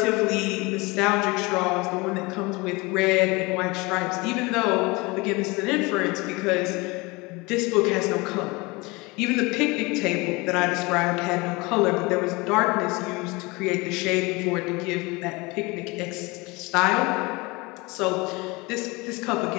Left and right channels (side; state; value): right; quieter; 24.8 dB